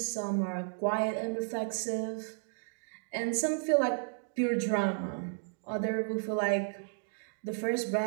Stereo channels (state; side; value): silent; left; digital silence